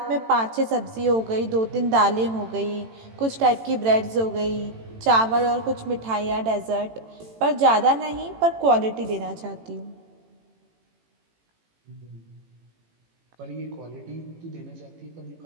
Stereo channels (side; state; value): left; late; 18 ms